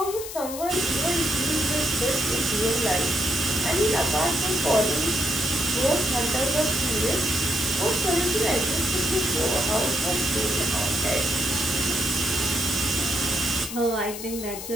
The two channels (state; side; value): noise; left; hiss, 10 dB below the sound